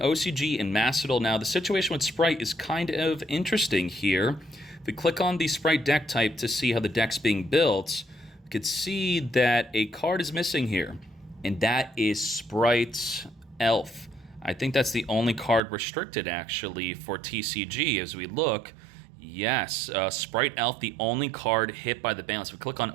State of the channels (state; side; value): drops out; left; at 15.6 s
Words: and Master Duel. Now, the situation with Sprite is kind of interesting here. If we click on the Sprite deck type to see how the deck's being built, we could see that a card is missing here, and that is Sprite Elf. I think that's the only card restricted, actually, for TCG as we look. Yes, Sprite Elf, the only card hit by the ban list. If we click on